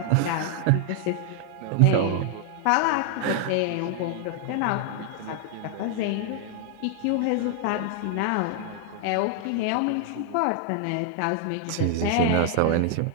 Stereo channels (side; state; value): both; different; correlation 0.00